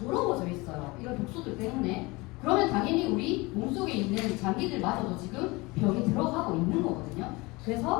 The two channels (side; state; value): right; quieter; 23.9 dB